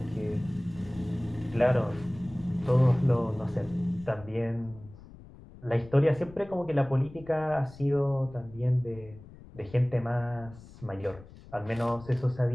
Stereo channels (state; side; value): noise; left; rumble, 19 dB below the sound